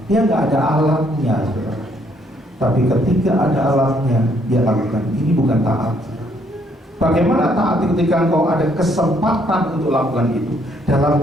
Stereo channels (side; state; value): both; normal; correlation 0.68